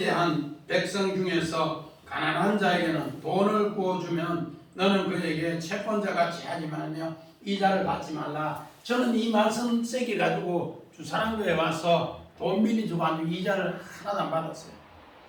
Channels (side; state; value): both; identical; correlation 1.00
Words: 백성 중에서 가난한 자에게는 돈을 구워주면 너는 그에게 채권자같이 하지 말며 이자를 받지 말라. 저는 이 말씀 세게 가지고 주사랑교에 와서 돈 빌려주고 아주 이자를 하나도 안 받았어요.